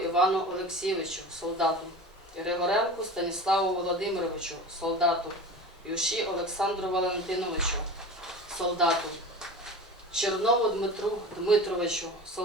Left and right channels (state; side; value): normal; both; correlation 0.34